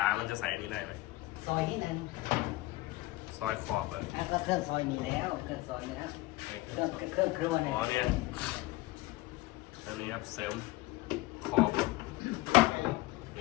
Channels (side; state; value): right; quieter; 19.2 dB